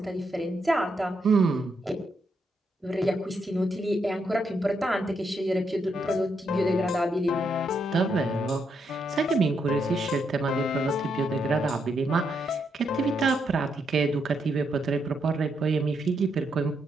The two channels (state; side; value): normal; both; correlation 0.79